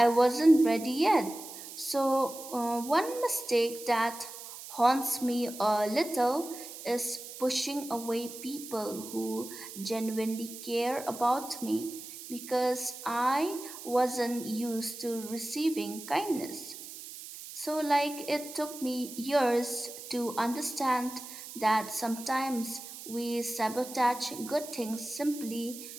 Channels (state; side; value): noise; right; hiss, 12 dB below the sound